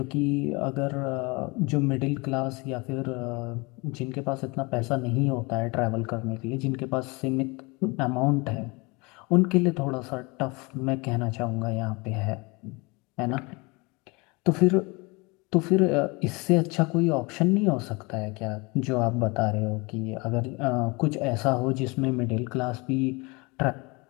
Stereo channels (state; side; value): quieter; right; 27.0 dB